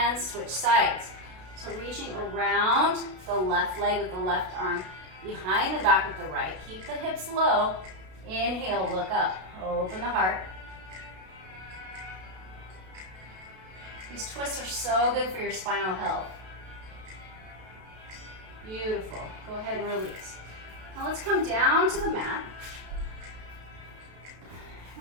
switch sides. So reaching around the left leg with the left arm, behind the back with the right. Keep the hips low. Inhale, look up. Open the heart. These twists are so good for your spinal health. Beautiful. Go ahead and release. Now let's come down to the mat.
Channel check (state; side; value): late; left; 32 ms